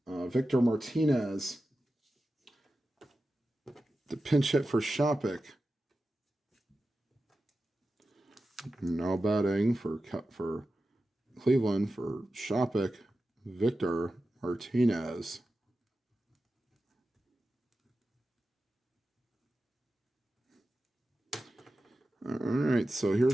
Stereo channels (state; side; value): normal; both; correlation 0.93